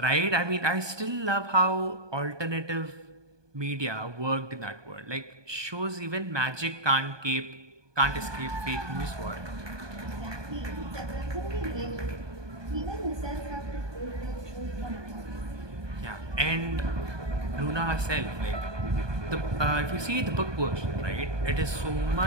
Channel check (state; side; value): late; left; 1.2 ms